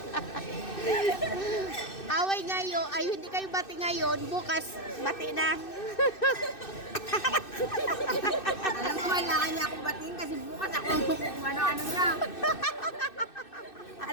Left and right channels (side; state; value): right; late; 2.6 ms